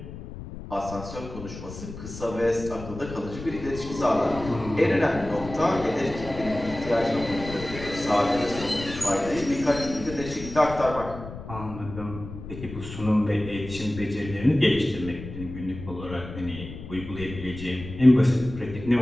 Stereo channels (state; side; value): noise; left; rumble, 11 dB below the sound